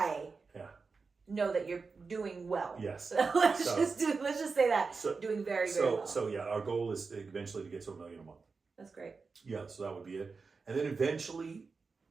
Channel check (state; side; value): quieter; left; 4.6 dB